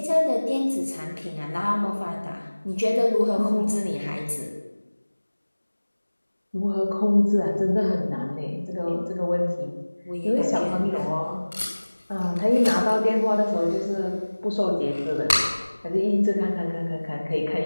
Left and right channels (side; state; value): both; inverted; correlation -1.00